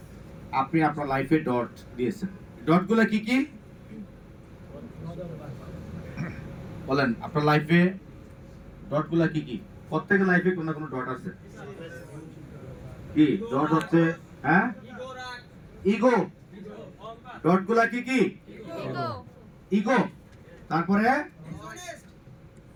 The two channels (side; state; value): both; identical; correlation 1.00